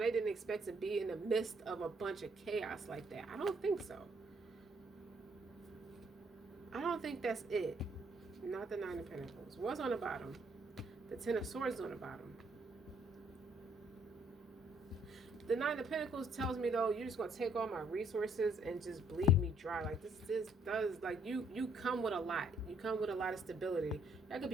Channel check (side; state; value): both; normal; correlation 0.67